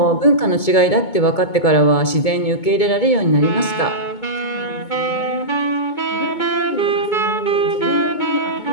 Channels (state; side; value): late; right; 2.2 ms